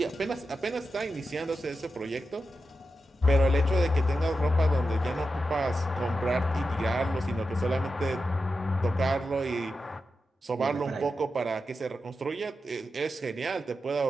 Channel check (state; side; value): normal; both; correlation 0.89